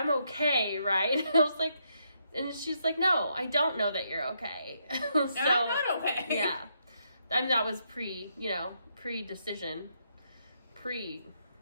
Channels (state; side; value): inverted; both; correlation -0.77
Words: okay, right? I was like, and she's like, no, I don't know that you're okay. So, I'm not okay. Yeah. And that was pre-decision.